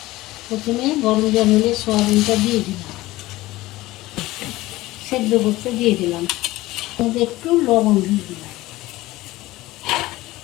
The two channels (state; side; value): quieter; right; 18.2 dB